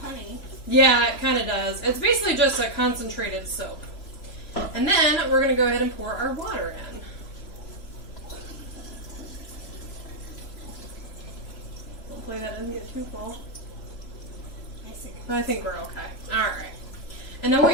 honey. Yeah, it kind of does. It's basically just a concentrated soap. And then we're going to go ahead and pour our water in. Hopefully that doesn't get too full. I think we're okay. All right. And then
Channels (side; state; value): right; late; 3.0 ms